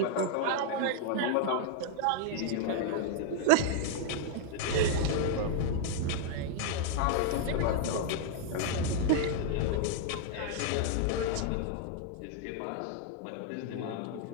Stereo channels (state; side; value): different; both; correlation 0.00